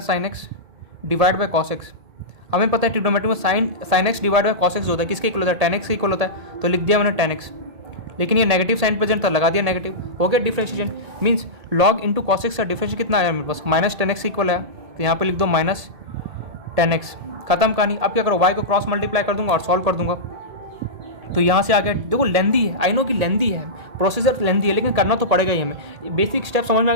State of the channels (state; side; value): late; left; 1.8 ms